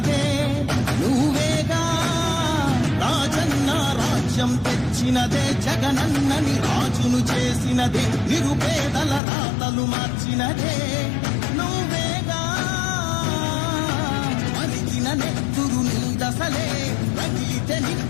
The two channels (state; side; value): drops out; right; at 9.2 s